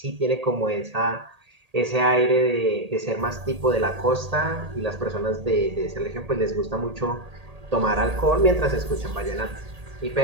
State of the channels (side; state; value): left; late; 1.8 ms